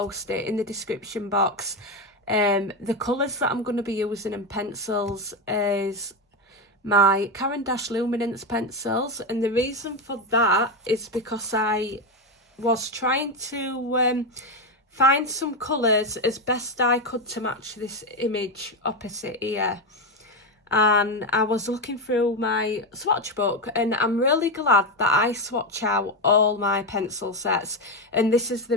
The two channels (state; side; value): normal; both; correlation 0.12